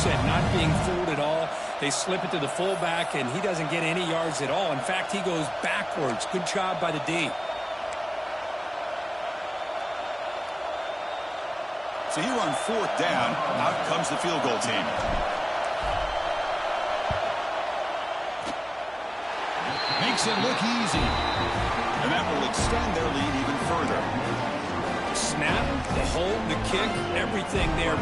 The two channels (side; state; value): both; identical; correlation 1.00